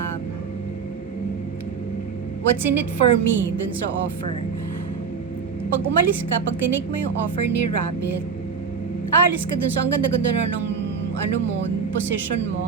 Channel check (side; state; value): left; quieter; 5.9 dB